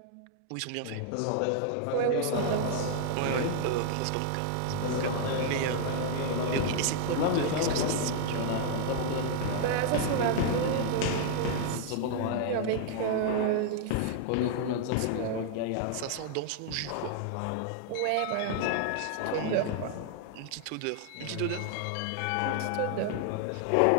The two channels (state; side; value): different; both; correlation 0.00